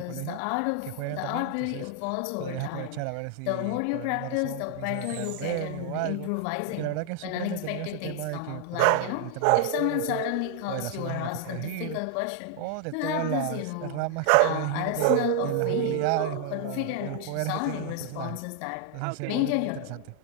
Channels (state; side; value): different; both; correlation 0.00